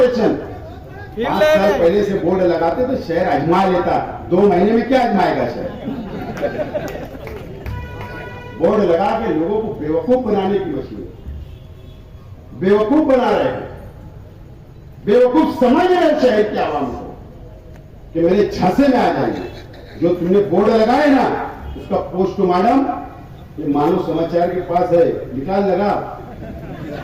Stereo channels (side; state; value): both; identical; correlation 1.00